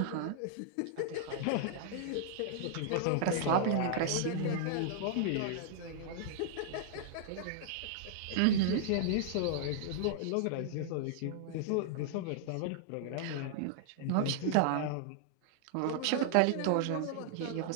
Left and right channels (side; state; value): both; different; correlation -0.01